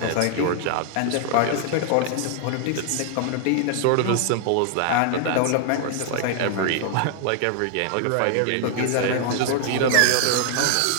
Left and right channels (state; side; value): different; both; correlation 0.00